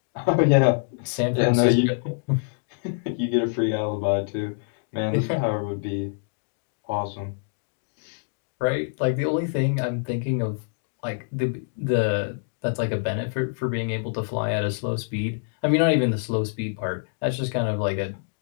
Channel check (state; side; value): silent; right; digital silence